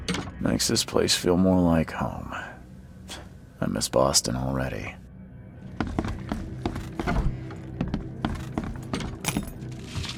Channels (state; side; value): identical; both; correlation 1.00